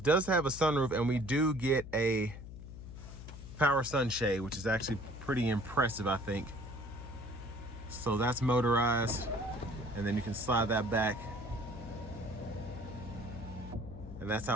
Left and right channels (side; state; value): left; noise; hum, 12 dB below the sound